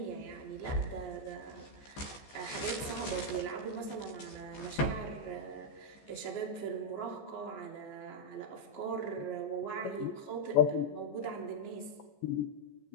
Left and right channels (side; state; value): right; late; 14 ms